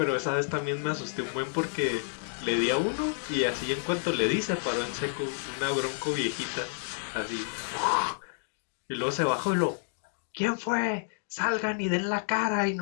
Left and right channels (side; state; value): right; silent; digital silence